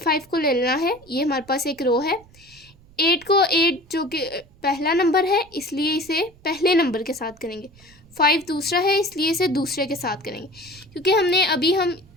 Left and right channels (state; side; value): noise; right; rumble, 27 dB below the sound